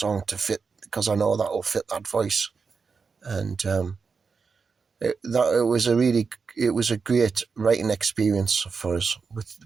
to fit, because I know that will fit that voice. And it was a great writing experience for us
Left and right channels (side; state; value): left; quieter; 5.1 dB